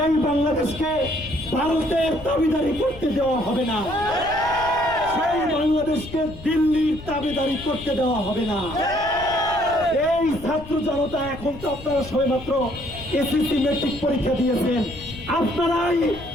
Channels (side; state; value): left; noise; rumble, 15 dB below the sound